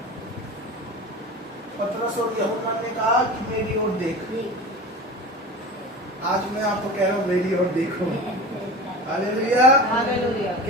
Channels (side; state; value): both; normal; correlation 0.32